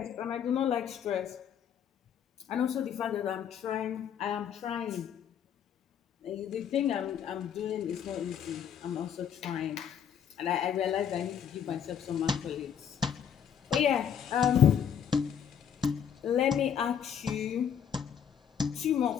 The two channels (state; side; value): quieter; right; 8.4 dB